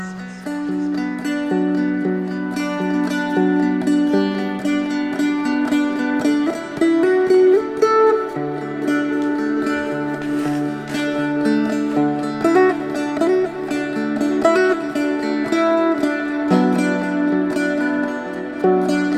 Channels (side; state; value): both; identical; correlation 1.00